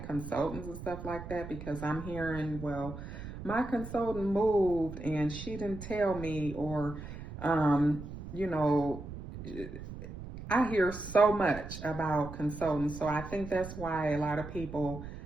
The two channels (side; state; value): right; noise; rumble, 11 dB below the sound